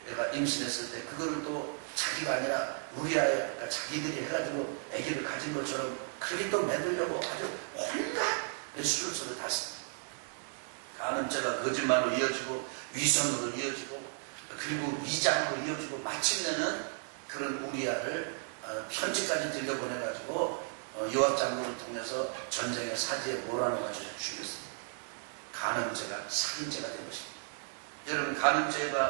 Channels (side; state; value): left; silent; 55 dB below the other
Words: 임신했을 때 그거를 또 자기가 아니라 우리아가 자기들이 해가지고 아기를 가진 것처럼 그렇게 또 만들려고 아주 온갖 술수를 탔습니다. 간음죄가 거짓말로 이어지고, 위선으로 이어지고, 그리고 위장으로 이어지고, 마침내는 그런 우리아를 편지까지 들려보내가지고 요압 장군을 통해서 전쟁의 사지에 몰아넣어가지고 죽였습니다. 간음죄가 살인죄가 된 것입니다. 여러분,